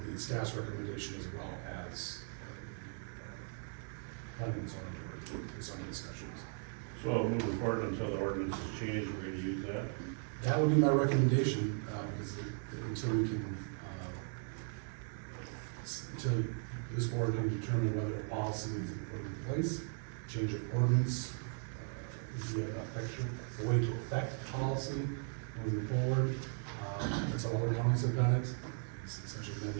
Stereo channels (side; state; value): left; silent; 53 dB below the other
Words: be staff's recommendation as well as, planning and zoning board, in some discussions. So moving forward until the ordinance is changed, we're gonna use that. That would be my recommendation, because until we can, until this board can determine whether a policy needs to be put in place, change of ordinance, would be a way to affect policy moving forward. That's how other counties have done it, essentially